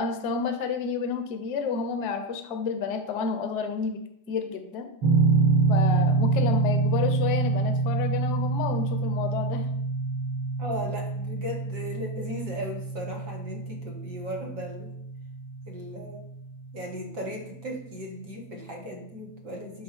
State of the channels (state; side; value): late; left; 6.5 ms